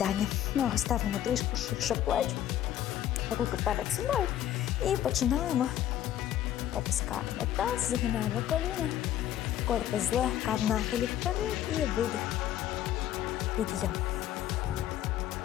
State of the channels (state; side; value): quieter; right; 11.8 dB